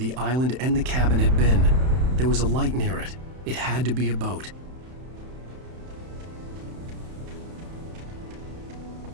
island and the cabin had been. There was a light near it. It had to be a boat.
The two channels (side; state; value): left; late; 31 ms